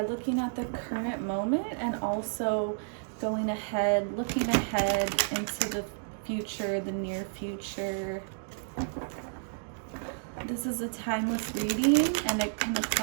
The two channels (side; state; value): left; silent; digital silence